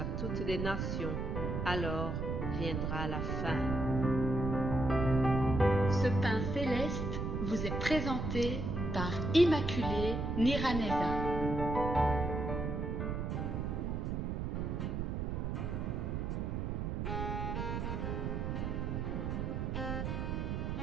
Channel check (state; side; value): noise; right; rumble, 1 dB below the sound